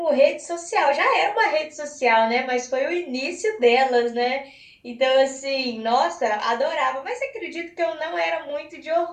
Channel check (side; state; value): both; identical; correlation 1.00